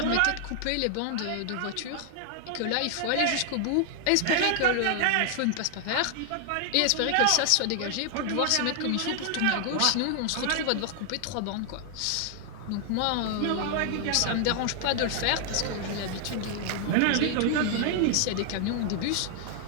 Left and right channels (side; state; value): both; different; correlation 0.00